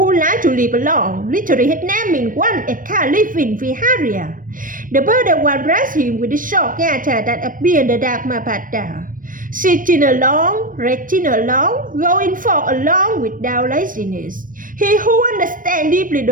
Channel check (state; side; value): late; left; 0.40 ms